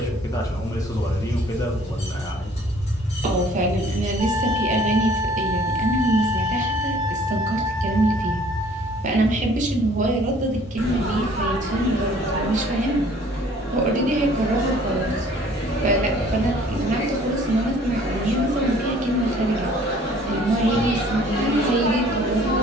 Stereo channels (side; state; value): both; normal; correlation 0.55